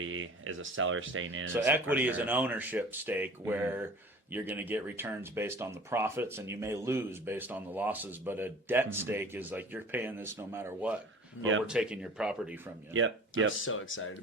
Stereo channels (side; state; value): both; normal; correlation 0.44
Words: is a seller staying in. So equity is an ownership stake where you're going to get returns based on the profits and you may lose based on the losses, but a debt stake is like you're paying this no matter what. or we're taking your property from you. I'm so excited to